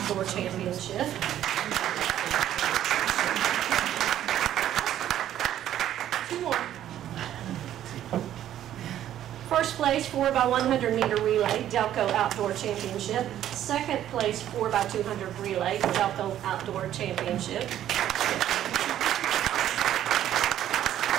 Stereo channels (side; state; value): left; quieter; 11.7 dB